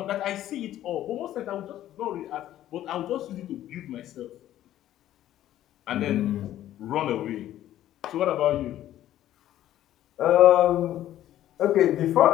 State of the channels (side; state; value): right; quieter; 12.8 dB